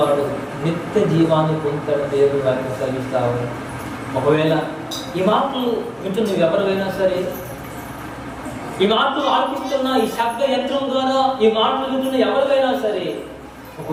నిత్య జీవాన్ని పొందుతాడు దేవుడు వారికి కలిగిస్తావు. ఒకవేళ ఈ మాటలు వింటూ నువ్వు ఎవరైనా సరే ఈ మాటలు ఆలపిస్తున్న ఈ శబ్ద యంత్రం ద్వారా ఈ మాటలు వింటున్న ఎవరికైనా సరే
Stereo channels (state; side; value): identical; both; correlation 1.00